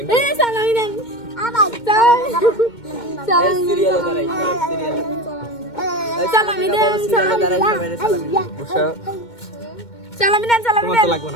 এ সালামি দেন সালামি দেন সালামি দেন সালামি দেন সালামি তোমার দেন তো লাগবে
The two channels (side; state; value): right; late; 2.2 ms